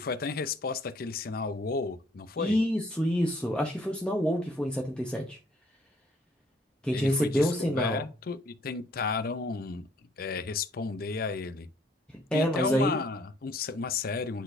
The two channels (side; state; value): both; normal; correlation 0.63